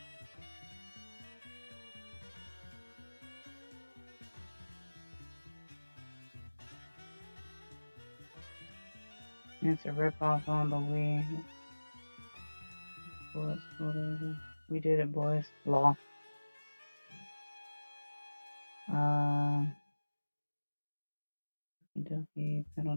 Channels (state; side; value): inverted; both; correlation -1.00